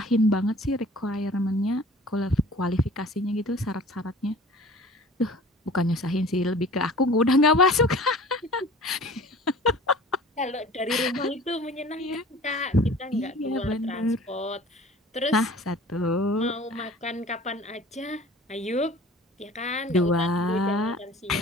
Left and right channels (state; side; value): normal; both; correlation 0.45